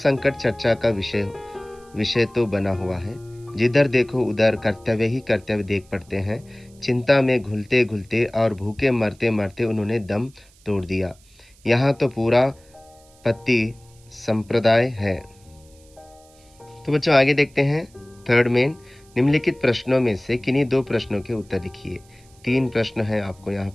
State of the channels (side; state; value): right; noise; hiss, 29 dB below the sound